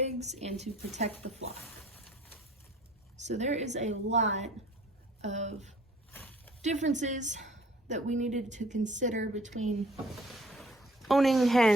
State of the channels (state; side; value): normal; both; correlation 0.55